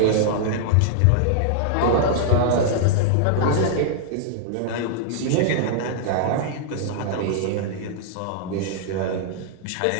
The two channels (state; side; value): different; both; correlation -0.01